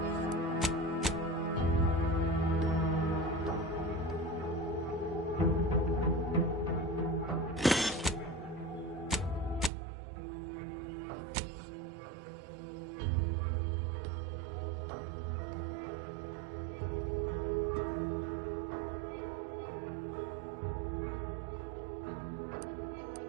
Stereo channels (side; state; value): left; drops out; at 9.7 s